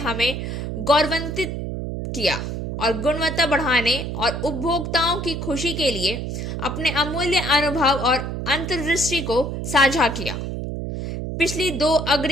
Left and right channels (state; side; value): noise; right; hum, 4 dB below the sound